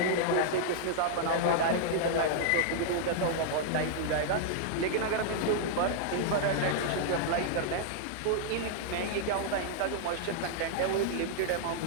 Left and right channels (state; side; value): different; both; correlation -0.01